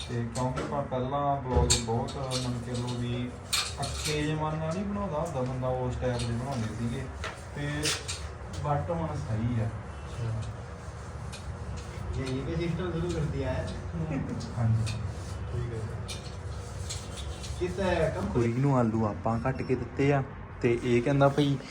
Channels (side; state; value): both; identical; correlation 1.00